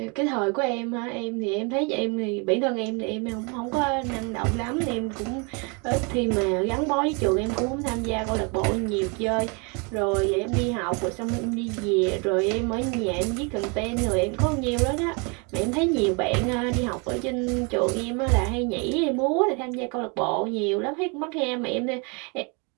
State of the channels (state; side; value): quieter; left; 32.7 dB